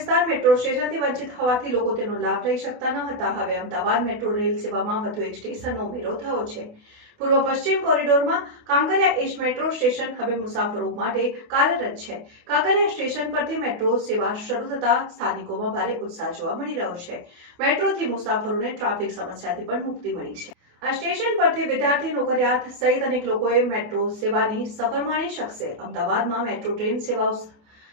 મેટ્રો સ્ટેશનથી વંચિત હોવાથી લોકો તેનો લાભ લઈ શકતા ન હતા. હવે અમદાવાદ મેટ્રો રેલ સેવામાં વધુ એક સ્ટેશનનો ઉમેરો થયો છે. પૂર્વ પશ્ચિમ કોરિડોરમાં કાંકરિયા એજ મેટ્રો સ્ટેશન હવે મુસાફરો માટે કાર્યરત છે. કાંકરિયા સ્ટેશન પરથી મેટ્રો સેવા શરૂ થતા સ્થાનિકોમાં ભારે ઉત્સાહ જોવા મળી રહ્યો છે. મેટ્રોથી મુસાફરોને ટ્રાફિક સમસ્યાથી પણ મુક્તિ મળી છે. આ સ્ટેશન પરથી વિદ્યાર્થી, નોકરિયાત સહિત અનેક લોકોએ મેટ્રો સેવાની સફર માણી શકશે. અમદાવાદમાં મેટ્રો ટ્રેન સેવાઓ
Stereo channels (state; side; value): late; left; 28 ms